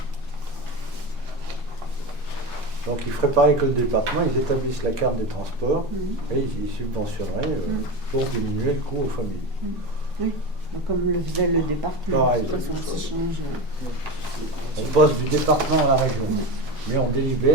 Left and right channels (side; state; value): both; normal; correlation 0.23